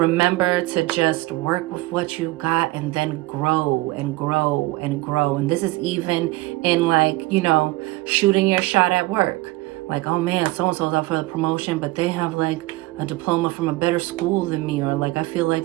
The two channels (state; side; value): quieter; left; 19.8 dB